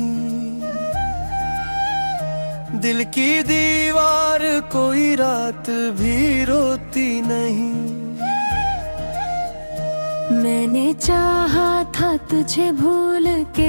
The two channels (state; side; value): inverted; both; correlation -1.00